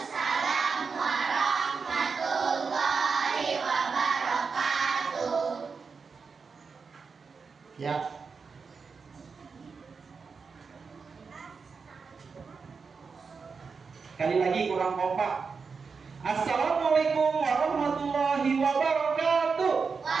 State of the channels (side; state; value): left; quieter; 5.2 dB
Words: warahmatullahi wabarakatuh. Ya. Sekali lagi kurang kompak. Assalamualaikum warahmatullahi wabarakatuh.